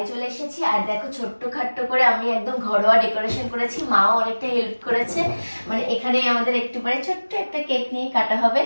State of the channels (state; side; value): inverted; both; correlation -1.00